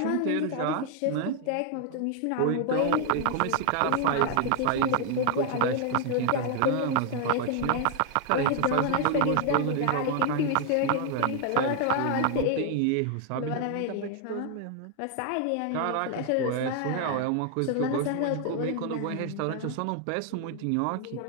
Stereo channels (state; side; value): different; both; correlation 0.00